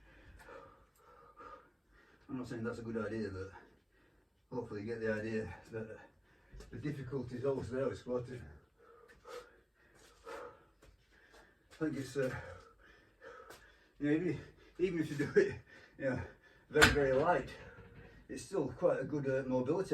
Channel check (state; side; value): identical; both; correlation 1.00